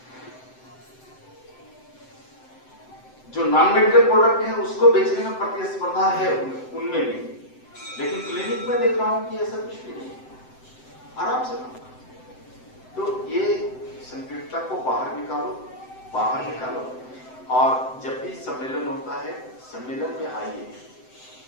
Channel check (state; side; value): late; right; 7.8 ms